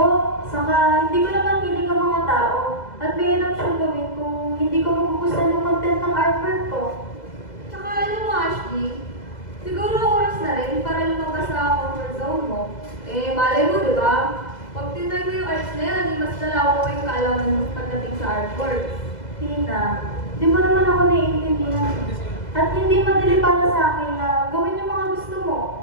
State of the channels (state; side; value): late; right; 2.0 ms